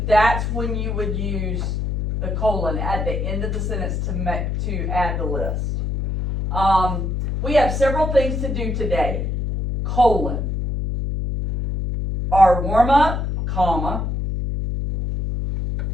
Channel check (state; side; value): noise; left; hum, 1 dB below the sound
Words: that's when you would use the colon at the end of the sentence to add the list. We have several things to do today. Colon. Our warm-up, comma.